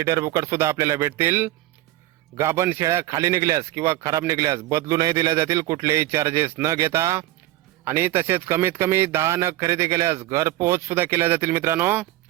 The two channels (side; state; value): left; quieter; 16.4 dB